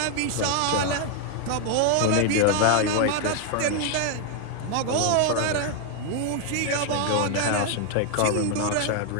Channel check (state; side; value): different; both; correlation 0.00